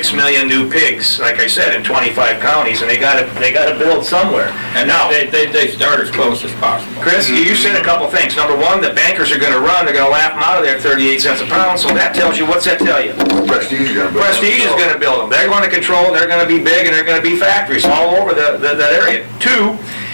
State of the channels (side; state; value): both; inverted; correlation -1.00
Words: million new pigs, like I said, in 25 counties, and they got to build somewhere. And now they start as close as possible. Chris, you said a couple things. Number one, the bankers are going to run. They're going to laugh them out of there at 38 cents a pound. So that tells you, what's that tell you? Prestige is gonna build. Prestige is going to build them. They're going to control. They're going to be big, and they're going to be factories all over that area. Two,